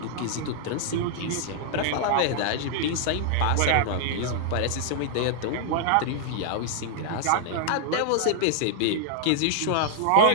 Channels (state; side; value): different; both; correlation -0.01